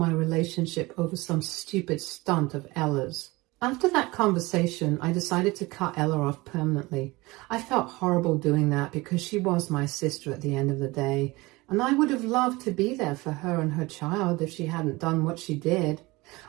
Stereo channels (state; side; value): quieter; left; 22.1 dB